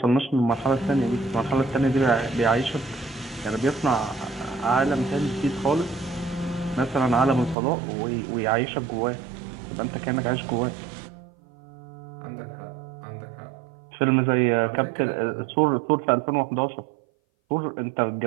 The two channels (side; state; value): left; drops out; at 7.6 s